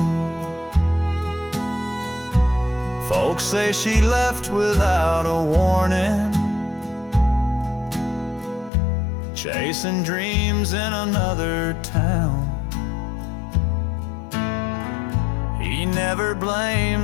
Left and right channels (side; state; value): right; drops out; at 8.7 s